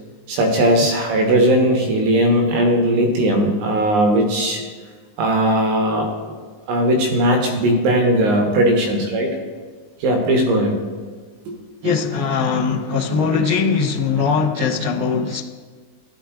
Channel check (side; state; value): left; late; 19 ms